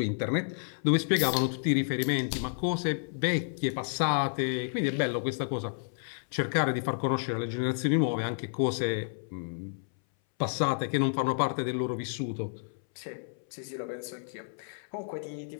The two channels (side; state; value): right; silent; 57 dB below the other